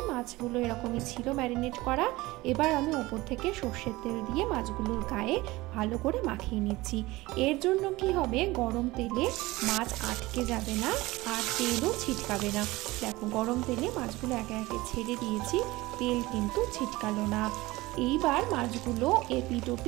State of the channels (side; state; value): left; quieter; 20.1 dB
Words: মাছগুলো এরকমই ছিল ম্যারিনেট করা। এবার আমি উপর থেকে সরষের তেল দিয়ে মাছগুলোর গায়ে ভালো করে মাখিয়ে নিচ্ছি। এর জন্য কি হবে, গরম তেলে মাছ আটকে যাবে না আর তেলও ছিটকাবে না। দেখো গরম তেলে মাছগুলো একে একে ছেড়ে দিয়েছি, তেল কিন্তু ছিটকালো না। এইবার মাছগুলো এপিট